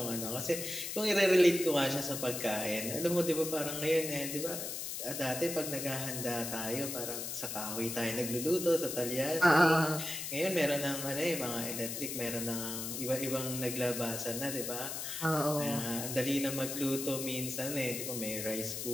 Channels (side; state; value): left; noise; hiss, 5 dB below the sound